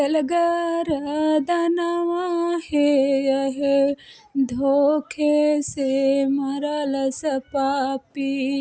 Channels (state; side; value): identical; both; correlation 1.00